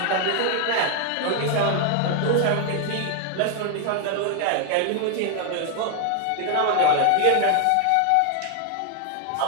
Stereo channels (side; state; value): both; different; correlation 0.00